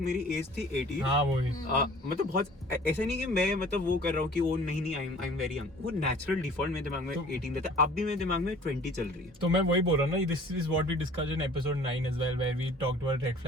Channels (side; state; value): both; normal; correlation 0.49